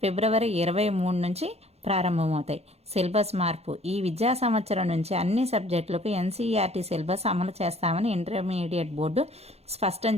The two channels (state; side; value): late; left; 0.30 ms